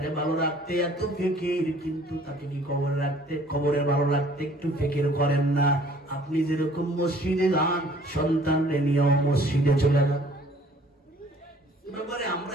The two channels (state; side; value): normal; both; correlation 0.56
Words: ভালো রাখতে এত ফিকির, কিন্তু তাকে কি কবরে ভালো রাখতে একটু ফিকির করেন না? আপনি যেরকম মসজিদে যান, সন্তানরে নিয়েও মসজিদে চলে যান। ব্যাপারে